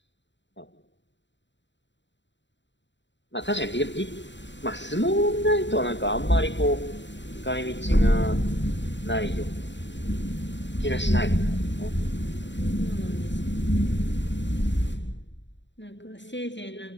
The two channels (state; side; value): late; right; 0.53 ms